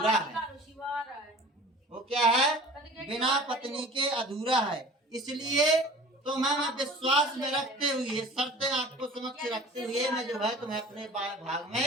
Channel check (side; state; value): both; normal; correlation 0.43